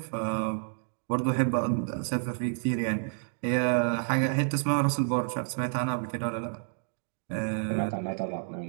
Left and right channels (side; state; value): left; silent; digital silence